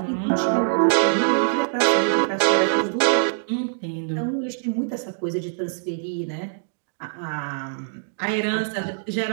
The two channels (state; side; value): silent; left; digital silence